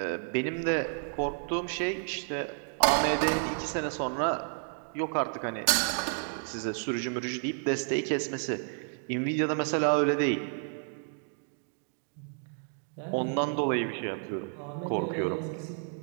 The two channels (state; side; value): silent; left; 57 dB below the other